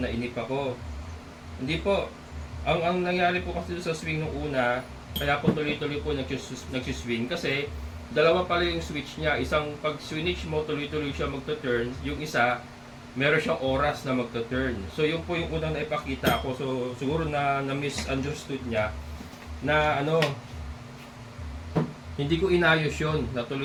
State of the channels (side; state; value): both; identical; correlation 1.00